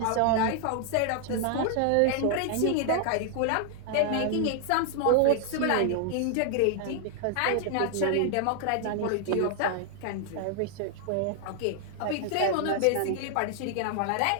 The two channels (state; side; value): different; both; correlation 0.00